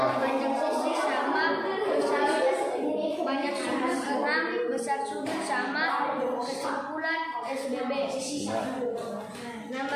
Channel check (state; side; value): identical; both; correlation 1.00